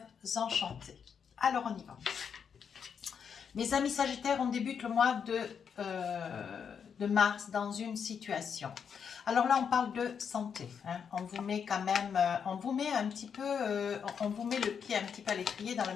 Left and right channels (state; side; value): quieter; right; 7.0 dB